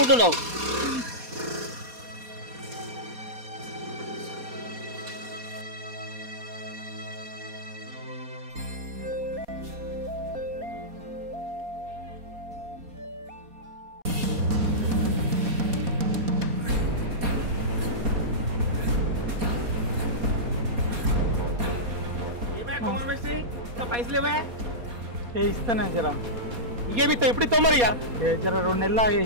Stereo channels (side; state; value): left; late; 4.2 ms